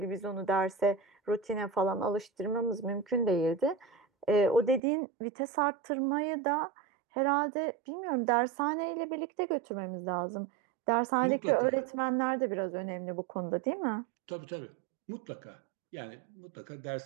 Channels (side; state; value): left; drops out; at 4.8 s